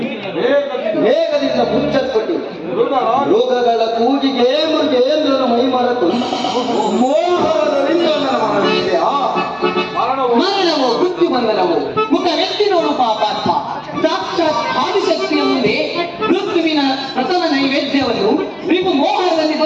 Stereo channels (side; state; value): both; identical; correlation 1.00